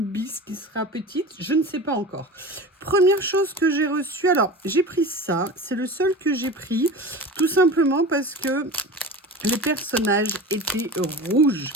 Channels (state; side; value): normal; both; correlation 0.32